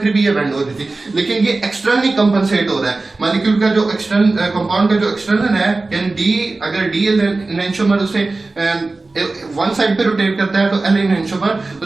भी ये बेंड हो रही थी, लेकिन ये एक्सटर्नली कंपनसेट हो रहा है। मॉलिक्यूल का जो कंपाउंड का जो एक्सटर्नल है, यानी D अगर D एनैंशोमर उसे वन साइड पे रोटेट करता है तो L एनैंशोमर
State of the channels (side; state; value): left; quieter; 3.4 dB